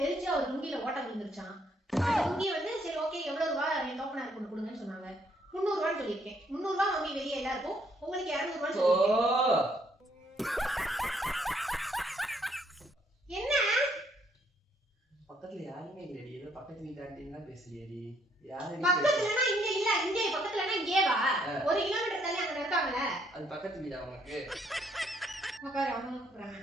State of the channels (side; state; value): both; normal; correlation 0.69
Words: தெரிஞ்சு அவர் லுங்கில ஓட்ட விழுந்துருச்சான். லுங்கி வந்து சரி ஓகே எவ்வளவு ரூபாய் என் தோப்பனாருக்கு கொண்டு கொடுங்கன்னு சொன்னாங்க. 300 ரூபான்னு சொல்லியிருக்கேன். 300 ரூபாய் வாங்கி வெளியே எல்லாருக்கும், உங்களுக்கு 200 ரூபான்னு சொல்லியிருக்கேன். என்ன பக்கத்துல யாருமே இல்லடி? ஏதோ பக்கத்து வீட்டு ஆண்டினா பேசுறியடி. யாரு பக்கத்துலனா இங்க இல்ல, இங்க பக்கத்துலனா இங்கே வா. 1 கிலோமீட்டர் தள்ளி அங்க இருக்காங்கல. அது பக்கத்து வீடா உனக்கு? உட்காரு, அவங்க கூப்பிடுறாங்க.